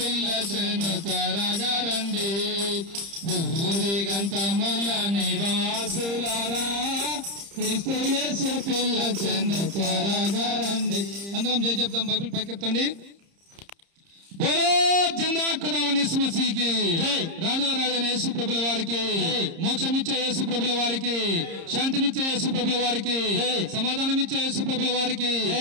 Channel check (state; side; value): late; left; 30 ms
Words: త్వరగా రండి. భూదిగంతముల నివాసులారా క్రీస్తు యేసు పిలచెను త్వరగా రండి. అందరం జై చెప్తాం, బైబిల్ పైకెత్తండి. బోలో జిందా ఖుదావని యేసు మసీహ్కి, రాజుల రాజైన యేసు ప్రభుల వారికి, మోక్షమిచ్చే యేసు ప్రభుల వారికి, శాంతినిచ్చే యేసు ప్రభుల వారికి, సమాధానమిచ్చే యేసు ప్రభుల వారికి,